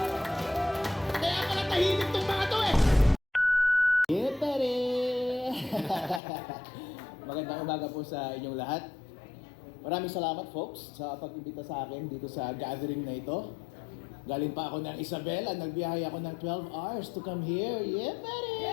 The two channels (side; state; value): right; drops out; at 6.2 s